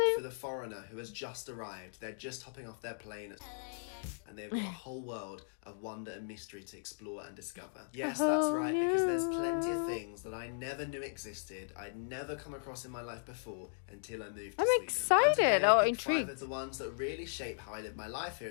for the foreigner who has just arrived. They're just hopping off their plane and they've got a whole world of wonder and mystery to explore and discover. A Yes, that's whole right, because there's plenty of new. things that I never knew existed, I'd never come across in my life before until I moved to I'm Sweden. And excited today I or picked 5 of intrigued. the ones that really shape how I live my life here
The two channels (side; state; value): right; silent; digital silence